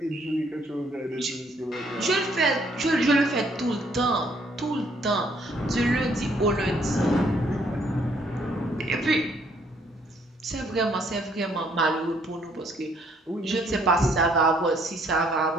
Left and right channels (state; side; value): normal; both; correlation 0.66